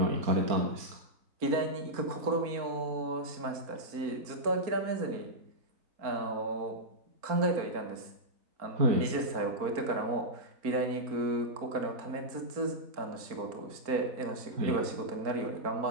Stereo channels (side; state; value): left; late; 4.4 ms